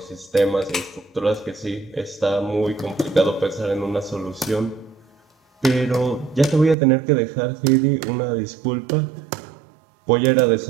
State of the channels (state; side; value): drops out; left; at 6.8 s